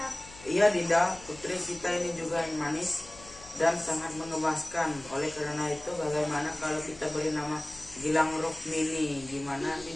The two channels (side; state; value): left; noise; hum, 19 dB below the sound